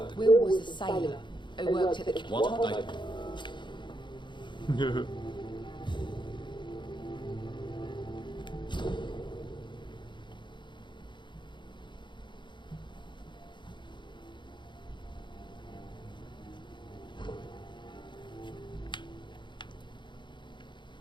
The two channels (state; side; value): late; right; 0.23 ms